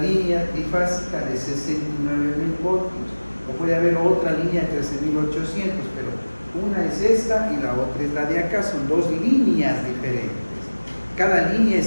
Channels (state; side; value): inverted; both; correlation -1.00